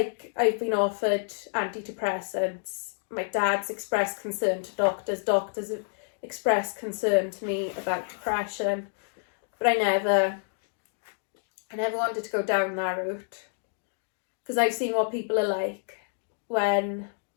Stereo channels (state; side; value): silent; right; digital silence